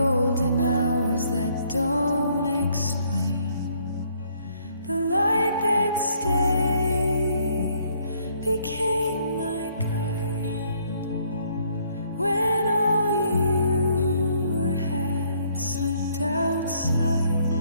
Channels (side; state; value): both; inverted; correlation -0.67